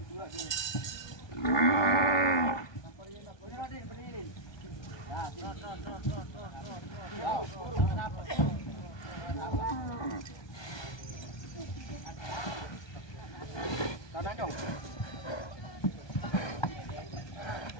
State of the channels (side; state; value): right; late; 1.2 ms